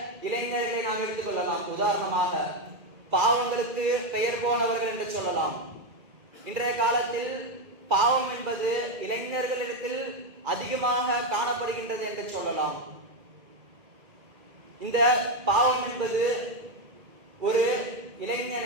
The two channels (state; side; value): late; left; 2.4 ms